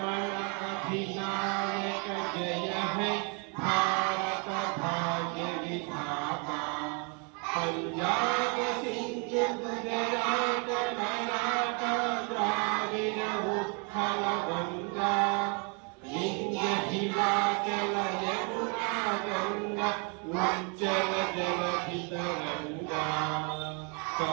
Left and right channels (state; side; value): quieter; left; 36.1 dB